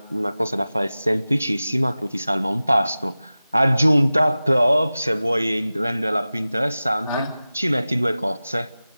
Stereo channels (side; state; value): both; inverted; correlation -0.96